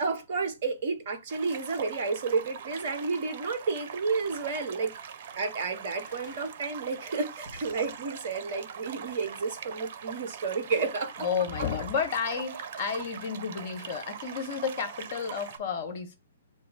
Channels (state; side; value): inverted; both; correlation -0.51